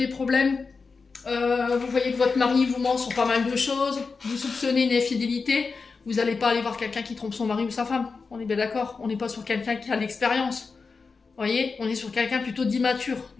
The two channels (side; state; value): right; quieter; 4.6 dB